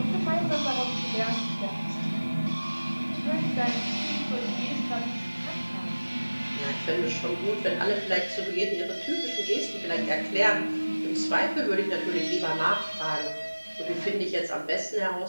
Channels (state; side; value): inverted; both; correlation -1.00